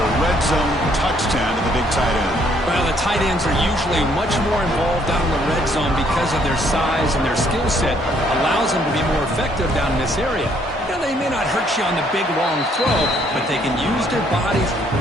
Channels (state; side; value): normal; both; correlation 0.66